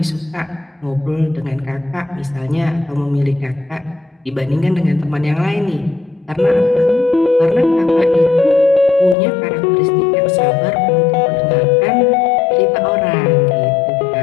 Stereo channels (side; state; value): right; drops out; at 9.2 s